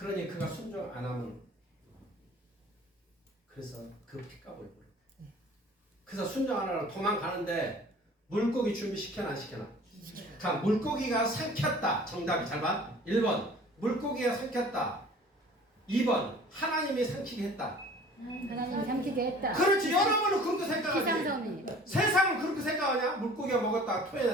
그가 순종 안 하면 그래서 그 피값을 물어. 그래서 순종 안 하고 도망가는데 물고기 준비시켜나 안 시켜나? 자, 물고기가 삼켰다. 정답이 잘 봐. 1번 물고기가 삼켰다. 2번 하나님이 삼키게 했다. 하나님이 삼키게 했다. 그렇지. 여러분은 그렇게 생각하지. 기상섬이. 세상은 그렇게 생각하냐? 물고기가 먹었다가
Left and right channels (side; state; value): both; normal; correlation 0.47